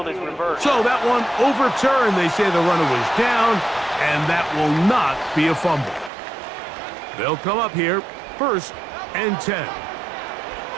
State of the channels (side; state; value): left; drops out; at 6.1 s